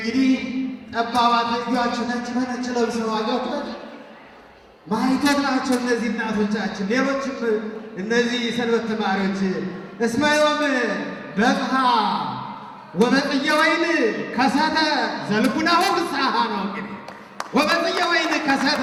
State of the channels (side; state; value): both; identical; correlation 1.00